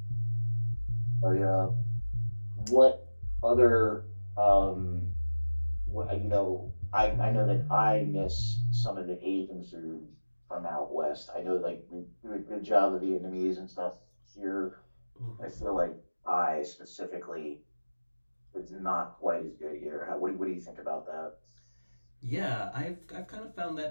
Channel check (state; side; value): inverted; both; correlation -1.00